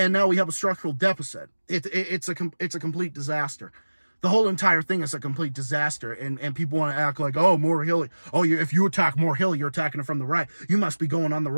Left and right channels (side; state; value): both; inverted; correlation -1.00